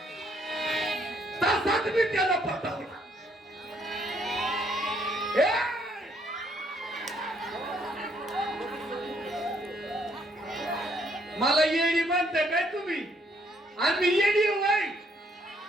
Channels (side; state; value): both; normal; correlation 0.69